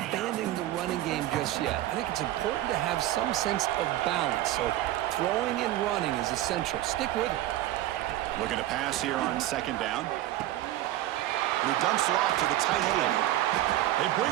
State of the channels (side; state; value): left; quieter; 14.6 dB